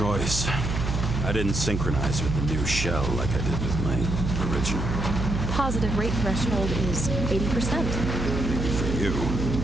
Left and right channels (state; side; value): noise; right; hum, 2 dB below the sound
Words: I didn't synchronize with the new shell like I did with my original. Positive rate threshold is 80%. Maybe for you.